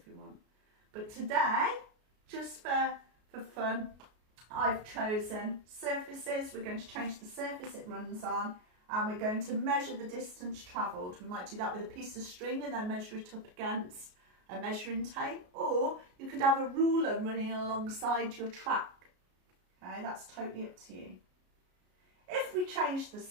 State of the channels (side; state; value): left; late; 33 ms